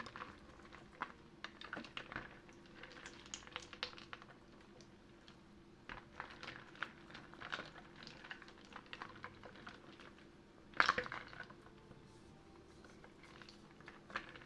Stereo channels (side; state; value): both; identical; correlation 1.00